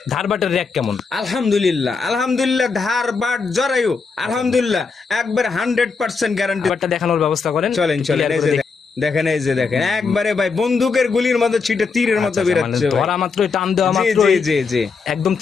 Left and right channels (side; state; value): right; quieter; 4.9 dB